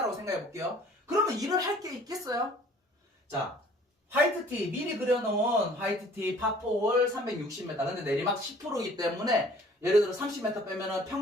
생각해 볼게요. 그러면 일을 할 게 있겠어요? 자, 화이트티, 미리 그려놓은 화이트티 파4홀 360m. 근데 내리막 10%이기 때문에 예를 들어 30m 빼면은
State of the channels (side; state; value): both; normal; correlation 0.53